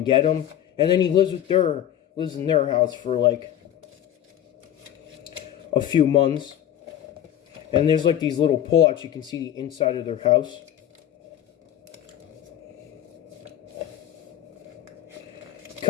get him, and then he lives in their house for like a few months. And there's like these little pullouts, you can see the inside of their house.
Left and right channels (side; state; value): right; quieter; 11.1 dB